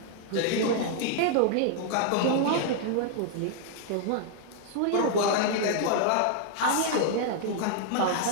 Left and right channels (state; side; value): different; both; correlation 0.00